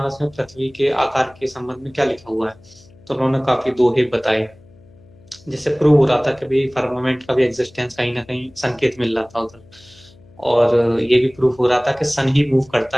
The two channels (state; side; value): noise; left; hum, 26 dB below the sound